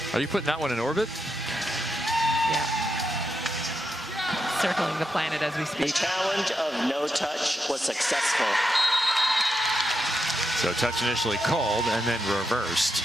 Are you putting that one in orbit? circling the planet as we The speak. challenge of no touch was successful. So touch initially called and then reversed.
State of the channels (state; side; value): normal; both; correlation 0.85